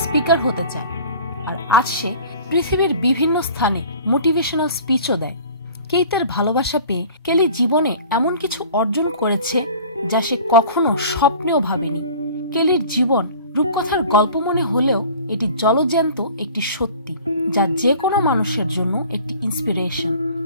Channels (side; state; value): both; inverted; correlation -0.44